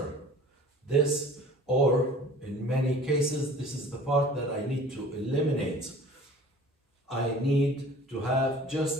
This, or in many cases, this is the part that I need to eliminate. I need to have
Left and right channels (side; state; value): both; normal; correlation 0.46